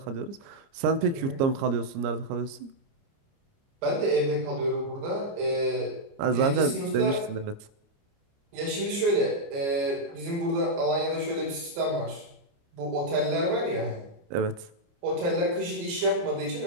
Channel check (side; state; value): left; late; 29 ms